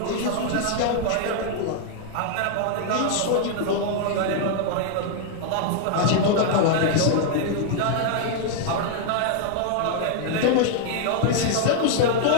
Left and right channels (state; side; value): different; both; correlation 0.00